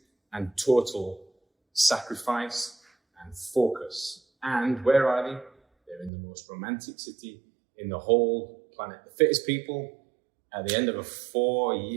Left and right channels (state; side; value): drops out; left; at 6.1 s